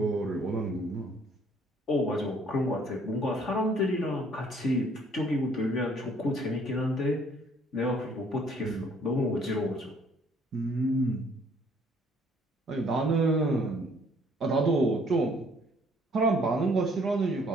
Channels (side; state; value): both; normal; correlation 0.61